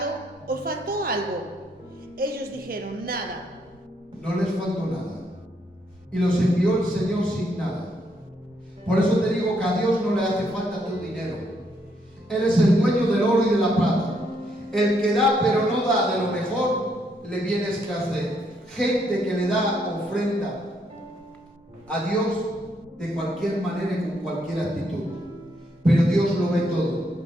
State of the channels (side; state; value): both; normal; correlation 0.74